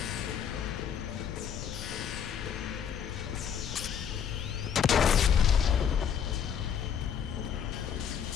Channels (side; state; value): right; quieter; 8.0 dB